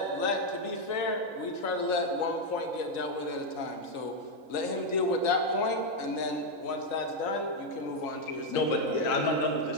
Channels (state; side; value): late; right; 3.9 ms